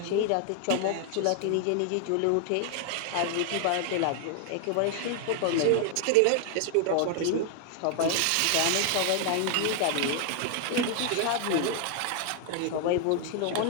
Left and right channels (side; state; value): both; different; correlation 0.00